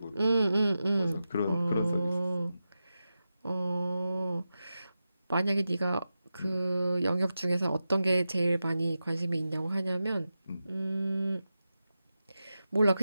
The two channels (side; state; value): both; inverted; correlation -0.91